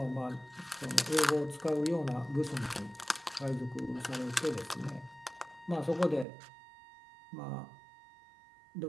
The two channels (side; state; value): left; drops out; at 6.2 s